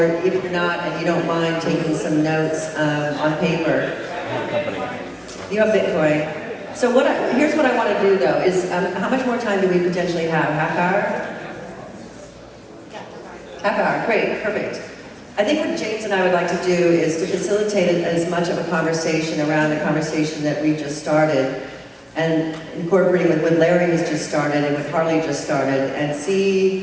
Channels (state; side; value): identical; both; correlation 1.00